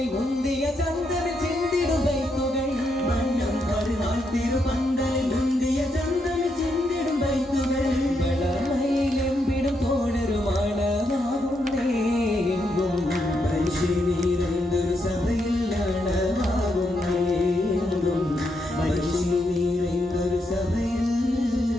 മുന്തിയ ചന്ദനം ചിന്തിടും ബൈത്തുകൾ വണ്ണം പരുനാൾ തിരുപന്തലിൽ മുന്തിയ ചന്ദനം ചിന്തിടും ബൈത്തുകൾ വളമയിലെമ്പിടും തോഴരുമാണമാകുന്നേ എങ്കും മനുഷ്യനീരെന്തൊരു സഭയിലാണമാകുന്നേ എങ്കും മനുഷ്യനീരെന്തൊരു സഭയിൽ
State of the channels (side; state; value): both; normal; correlation 0.80